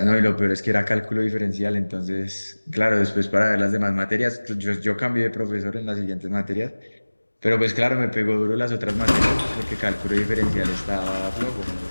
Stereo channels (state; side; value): inverted; both; correlation -1.00